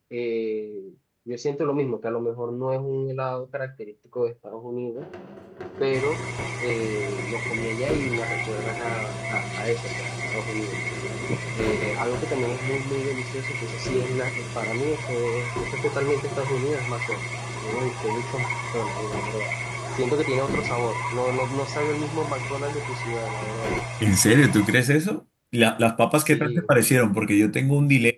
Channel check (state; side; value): identical; both; correlation 1.00